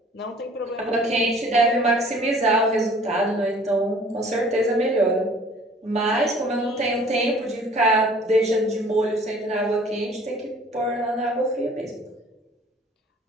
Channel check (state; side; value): normal; both; correlation 0.52